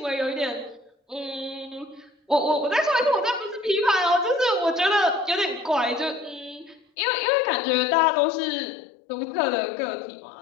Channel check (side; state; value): right; drops out; at 6.8 s